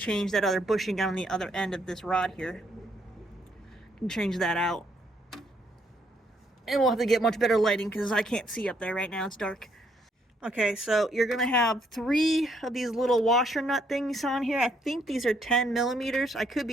that other bushing on the other end of this rod here. I can change that out. And we'll have to get much better lighting because I can't see up there right now, it's dark. Okay, so you're gonna have 3 of these little washer nut things on here. I think these are 10 millimeters. I could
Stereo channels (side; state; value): both; normal; correlation 0.71